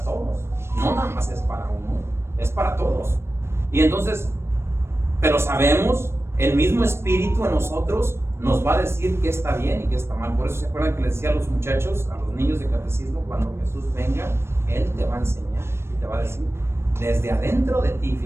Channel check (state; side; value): late; left; 0.12 ms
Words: todos, no nada más es para uno, es para todos. Y entonces, pero sabemos, el mismo Espíritu en nosotros nos va a decir qué está bien y qué está mal. Por eso se acuerdan que les decía a los muchachos, a los niños de catecismo, cuando Jesús venga, Él te va a enseñar y te va a decir desde adentro de ti,